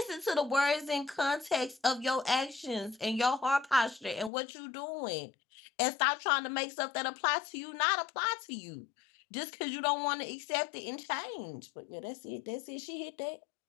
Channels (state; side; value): drops out; right; at 4.3 s